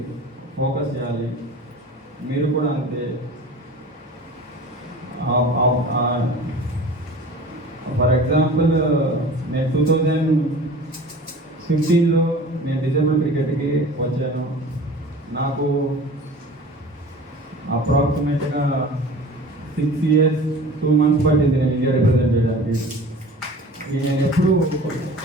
ఫోకస్ చేయాలి. మీరు కూడా అంతే. ఫర్ ఎగ్జాంపుల్ నేను 2015లో నేను డిజేబుల్ క్రికెట్కి వచ్చాను. నాకు అప్రాక్సిమేట్గా 6 years 2 months పట్టింది నేను ఇండియా రిప్రజెంట్ చేయడానికి.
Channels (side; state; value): both; normal; correlation 0.40